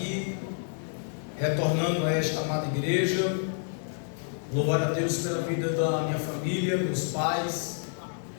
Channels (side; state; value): right; silent; digital silence